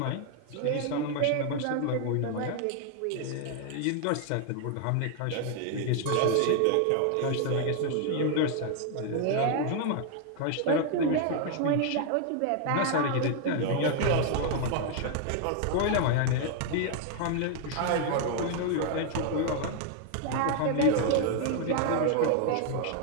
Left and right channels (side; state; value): both; different; correlation 0.00